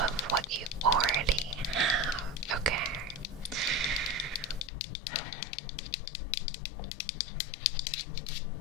of what you already have, okay?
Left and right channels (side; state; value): right; drops out; at 4.7 s